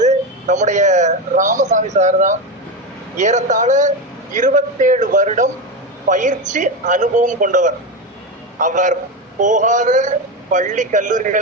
நம்முடைய ராமசாமி சார் தான். ஏறத்தாழ 27 வருடம் பயிற்சி அனுபவம் கொண்டவர். அவர் போகாத பள்ளி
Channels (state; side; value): normal; both; correlation 0.15